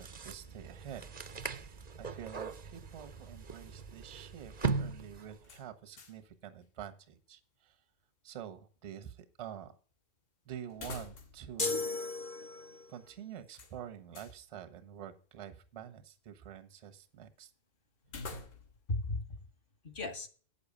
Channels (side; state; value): right; late; 2.4 ms